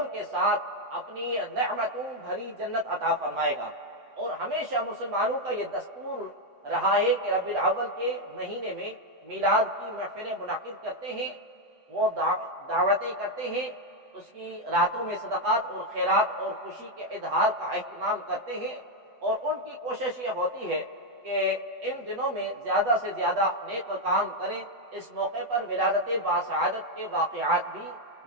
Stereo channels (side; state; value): left; late; 8.1 ms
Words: کے ساتھ اپنی نعمتوں بھری جنت عطا فرمائے گا۔ اور ہمیشہ مسلمانوں کا یہ دستور رہا ہے کہ ربیع الاول کے مہینے میں میلاد کی محفلیں منعقد کرتے ہیں، وہ دعوتیں کرتے ہیں، اس کی راتوں میں صدقات اور خیرات اور خوشی کے اظہار کا اہتمام کرتے ہیں، اور ان کی کوشش یہ ہوتی ہے کہ ان دنوں میں زیادہ سے زیادہ نیک کام کریں۔ اس موقع پر ولادت باسعادت کے واقعات بھی